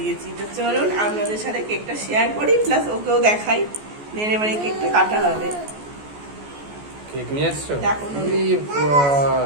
তো চলুন আপনাদের সাথে কেকটা শেয়ার করি, প্লাস ওকেও দেখাই। দেন এবারে কেকটা কাটা হবে। কেক নিয়ে আসছো? দেখো না।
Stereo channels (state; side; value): late; left; 14 ms